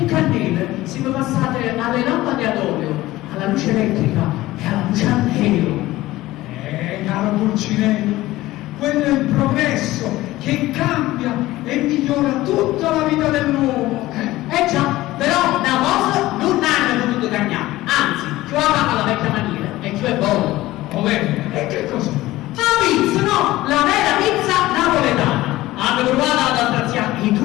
cannelle siamo passati alle lampade ad olio, alla luce elettrica e alla luce a nero. Caro Pulcinella, quello è il progresso che cambia e migliora tutta la vita dell'uomo. Già, però da cosa non hanno potuto cambiare, anzi, più avanti alla vecchia maniera e più è buono. E che cosa? La pizza, no, la vera pizza napoletana. Hanno provato ad attraziare in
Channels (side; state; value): right; quieter; 17.1 dB